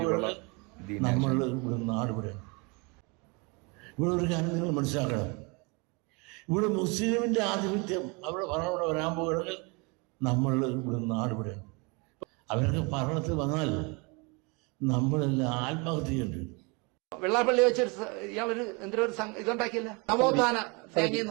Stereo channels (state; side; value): quieter; left; 29.9 dB